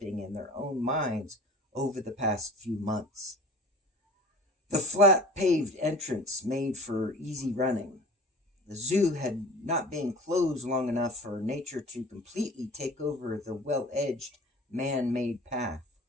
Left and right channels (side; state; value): both; normal; correlation 0.42